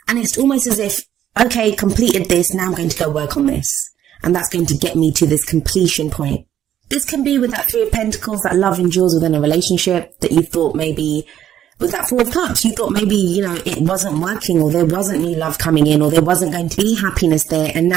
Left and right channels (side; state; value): left; quieter; 10.7 dB